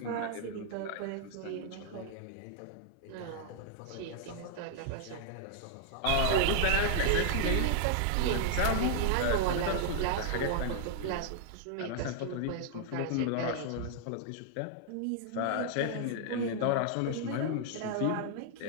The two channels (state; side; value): different; both; correlation 0.00